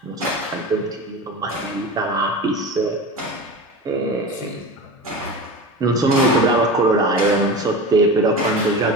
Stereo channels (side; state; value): both; normal; correlation 0.30